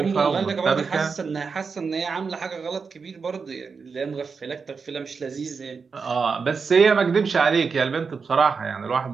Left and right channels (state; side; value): quieter; left; 5.2 dB